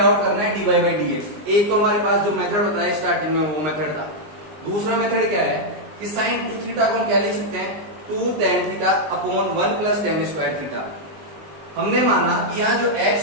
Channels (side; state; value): left; late; 19 ms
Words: out करना है dy बाई dx। एक तो हमारे पास जो मेथड बताया स्टार्टिंग में वो मेथड था। दूसरा मेथड क्या है कि साइन 2 थीटा को हम क्या लिख सकते हैं, 2 tan theta upon 1 plus tan square theta. हमने माना कि यहाँ जो